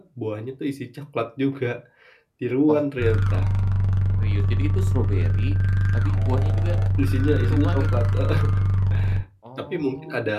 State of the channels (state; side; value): identical; both; correlation 1.00